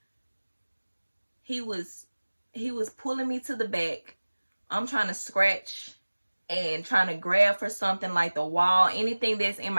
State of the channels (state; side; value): inverted; both; correlation -1.00